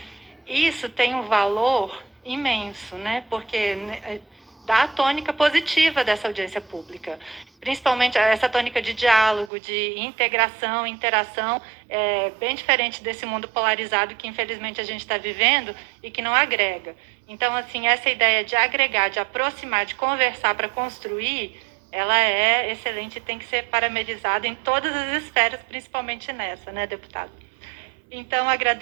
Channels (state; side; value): drops out; left; at 9.5 s